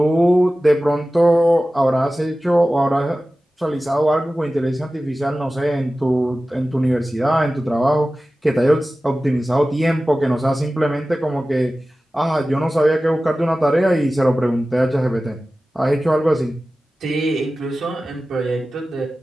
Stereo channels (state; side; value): normal; both; correlation 0.96